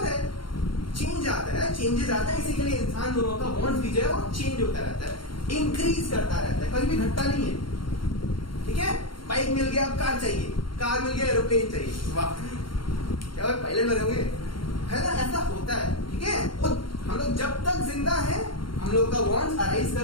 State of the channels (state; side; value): late; right; 0.73 ms